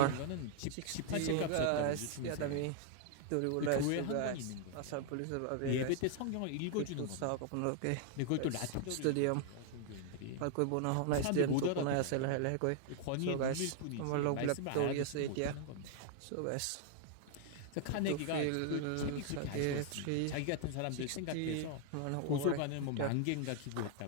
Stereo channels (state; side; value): different; both; correlation 0.00